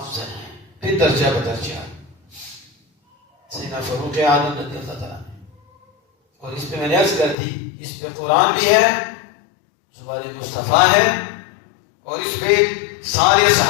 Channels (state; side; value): drops out; right; at 7.4 s